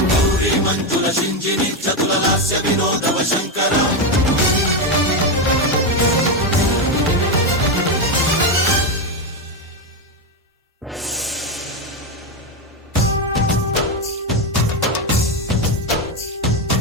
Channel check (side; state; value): both; normal; correlation 0.09